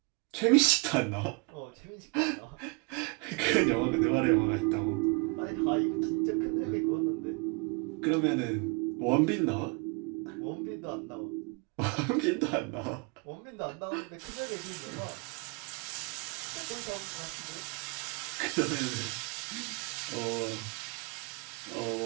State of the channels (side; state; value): left; quieter; 30.6 dB